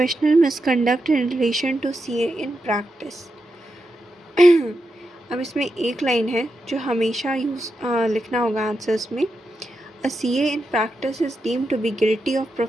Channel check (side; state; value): both; normal; correlation 0.87